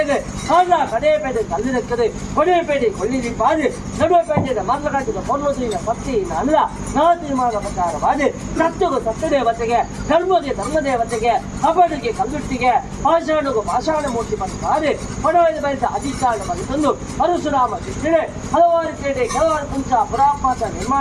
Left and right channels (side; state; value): both; identical; correlation 1.00